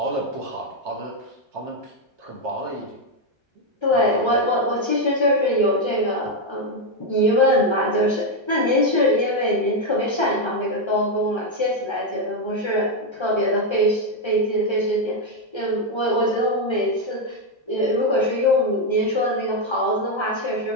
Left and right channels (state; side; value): late; right; 1.3 ms